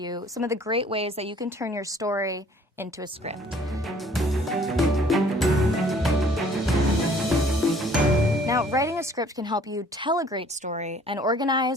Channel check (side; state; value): both; normal; correlation 0.56